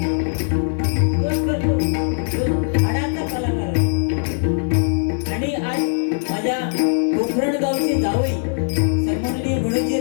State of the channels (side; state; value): right; silent; digital silence